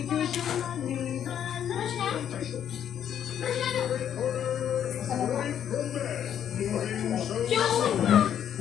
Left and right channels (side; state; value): right; quieter; 9.5 dB